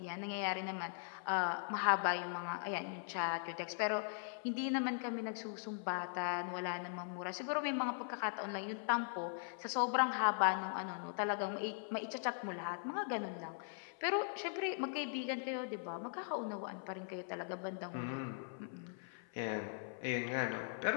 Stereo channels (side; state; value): right; silent; 51 dB below the other